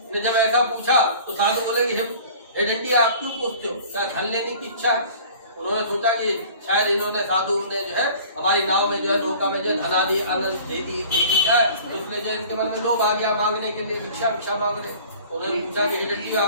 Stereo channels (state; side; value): inverted; both; correlation -0.46